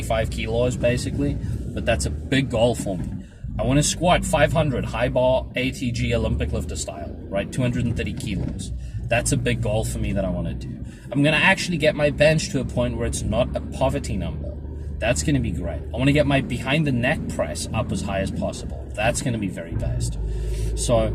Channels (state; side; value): identical; both; correlation 1.00